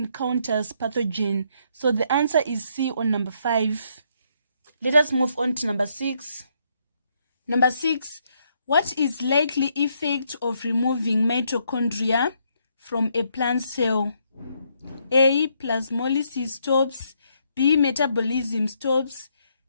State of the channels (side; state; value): both; inverted; correlation -0.73